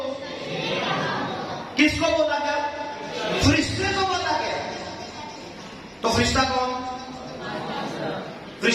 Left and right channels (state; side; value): identical; both; correlation 1.00